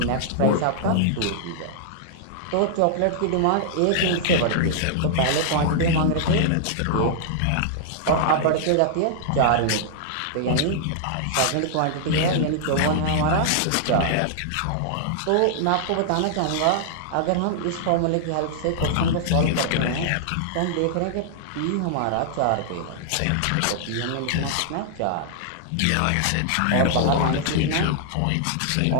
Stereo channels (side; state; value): both; different; correlation -0.01